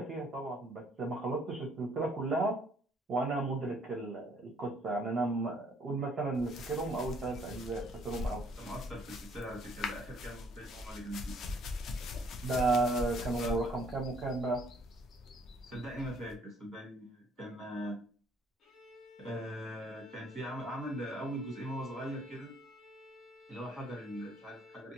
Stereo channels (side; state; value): both; normal; correlation 0.62